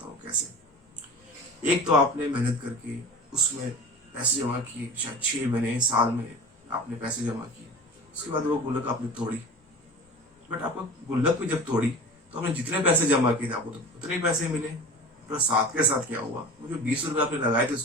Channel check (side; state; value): both; normal; correlation 0.36